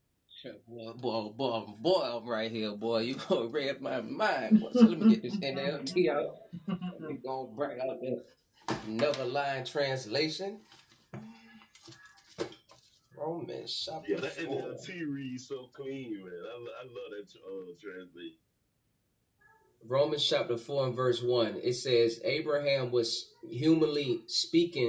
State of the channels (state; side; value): identical; both; correlation 1.00